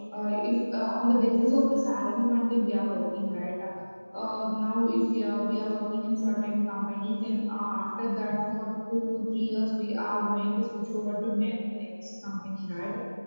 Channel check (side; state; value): both; inverted; correlation -1.00